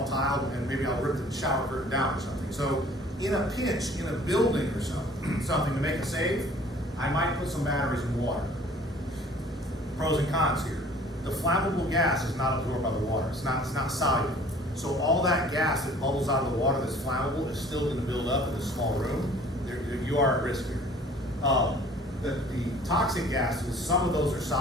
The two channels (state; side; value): normal; both; correlation 0.51